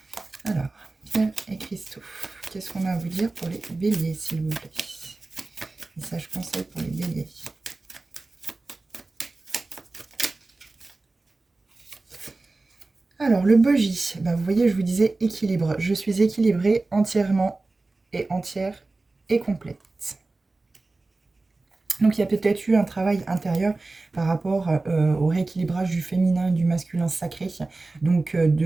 Alors, pierres et cristaux, qu'est-ce qu'on a à vous dire pour les béliers, s'il vous plaît? Message conseil pour les béliers. Alors, le bogie, ben, vous voyez, je vous disais équilibre. Je suis équilibrée entièrement et entière et complète. Donc, il y a peut-être eu un travail intérieur par rapport au rééquilibrage du féminin et du masculin sacré. Donc,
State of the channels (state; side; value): quieter; left; 3.3 dB